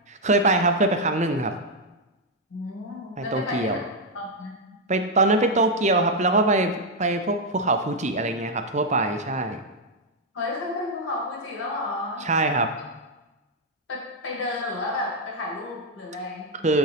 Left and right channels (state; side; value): normal; both; correlation 0.01